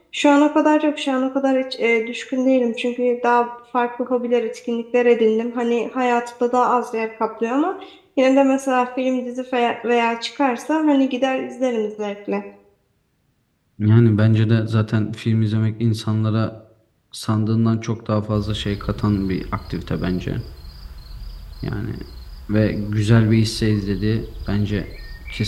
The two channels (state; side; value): identical; both; correlation 1.00